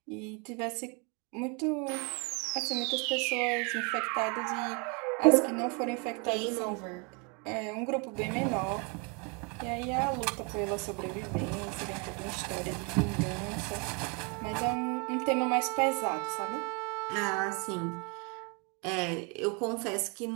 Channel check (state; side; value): quieter; left; 33.5 dB